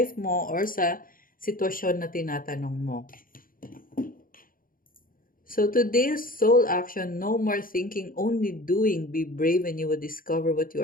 mo or sa sitwasyon na tinatanong mo. So today's soul action, no more thinking, only doing. Be brave and you will discover what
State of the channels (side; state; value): right; late; 0.41 ms